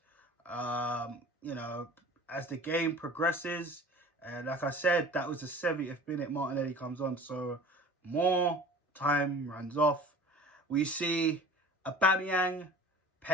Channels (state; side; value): normal; both; correlation 0.41